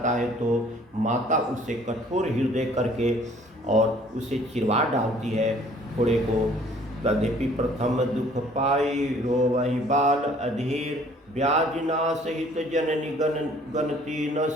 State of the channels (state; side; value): normal; both; correlation 0.56